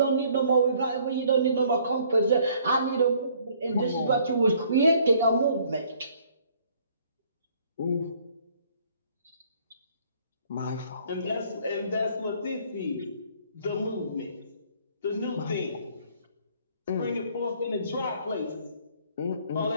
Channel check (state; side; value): inverted; both; correlation -0.60